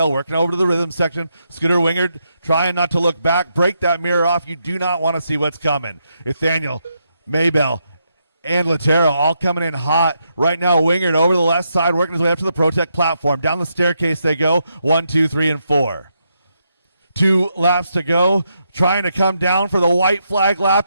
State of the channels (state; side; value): inverted; both; correlation -0.80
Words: working over to the rhythm section. Scooter Wingard trying not to look back. Break that mirror off. You do not want to see what's coming. Nathaniel, Maybell, and Latero all coming in hot. Right now, Wingard over the left side, working his way up to the Protect platform. Down the staircase they go. 1, 2, 3, and 4. 2 laps to go. Trying to come down for the white flag lap.